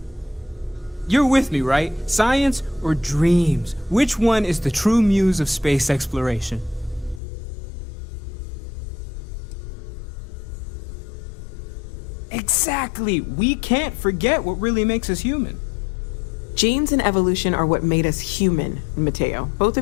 You're with me, right? Science or dreams? Which one is the true muse of space exploration? Exactly! We can't forget what really makes us human. Genes and evolution are what made us human, Mateo. Both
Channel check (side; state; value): right; drops out; at 7.2 s